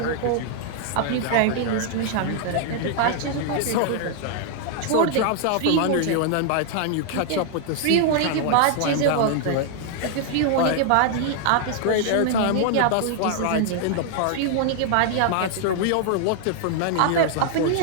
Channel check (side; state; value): both; different; correlation -0.01